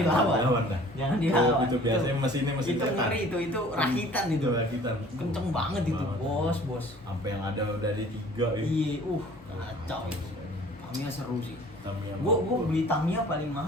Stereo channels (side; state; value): both; normal; correlation 0.50